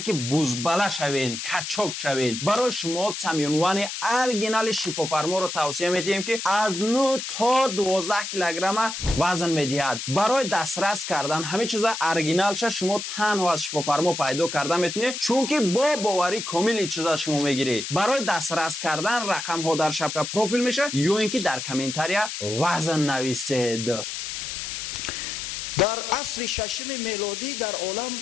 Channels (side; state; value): left; noise; hiss, 6 dB below the sound